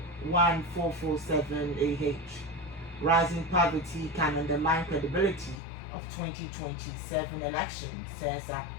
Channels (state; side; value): drops out; right; at 5.6 s